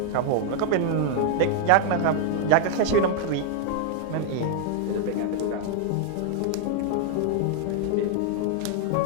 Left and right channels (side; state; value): both; different; correlation -0.01